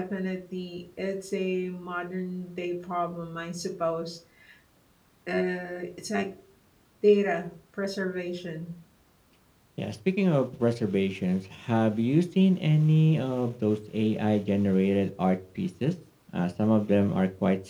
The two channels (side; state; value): both; identical; correlation 1.00